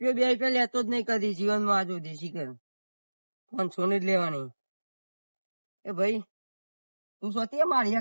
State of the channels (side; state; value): both; inverted; correlation -1.00